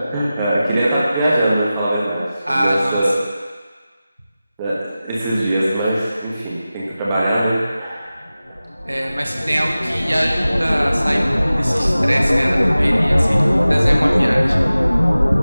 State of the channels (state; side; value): inverted; both; correlation -0.96